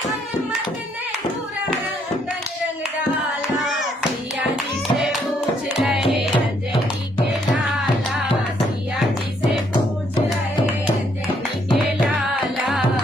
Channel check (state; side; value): normal; both; correlation 0.71